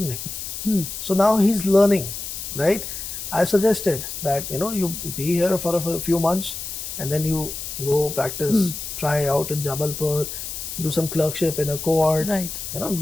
So now he's learning, right? I suggested that, you be here for a few months and then you go practice, try out in Jabalpur, do some clerkship in a court, Right.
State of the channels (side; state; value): left; noise; hiss, 7 dB below the sound